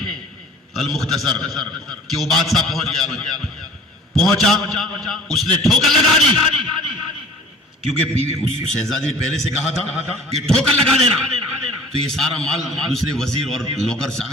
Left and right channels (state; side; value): normal; both; correlation 0.47